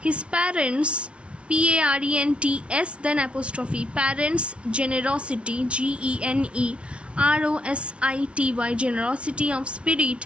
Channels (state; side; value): late; left; 0.060 ms